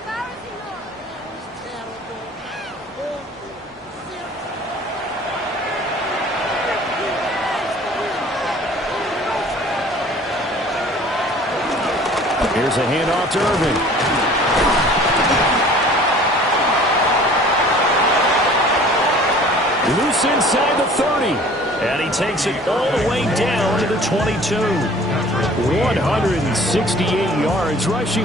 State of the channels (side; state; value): both; normal; correlation 0.49